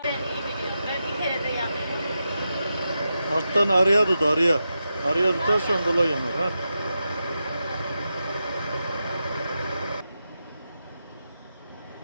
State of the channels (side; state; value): both; inverted; correlation -0.89